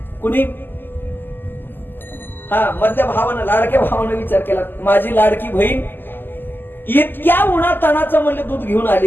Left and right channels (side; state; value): right; late; 0.094 ms